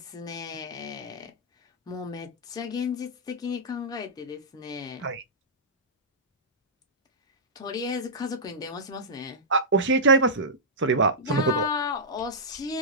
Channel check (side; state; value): both; normal; correlation -0.12